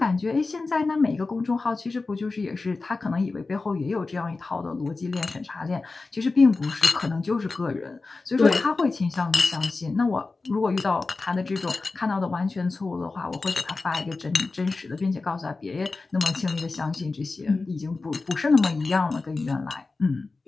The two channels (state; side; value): quieter; right; 3.7 dB